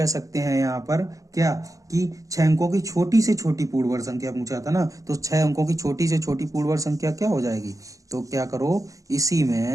सकते हैं यहाँ पर क्या, कि 6 अंकों की छोटी से छोटी पूर्ण वर्ग संख्या पूछा था ना, तो 6 अंकों की छोटी से छोटी पूर्ण वर्ग संख्या क्या हो जाएगी, तो क्या करो, इसी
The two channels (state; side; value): late; left; 0.16 ms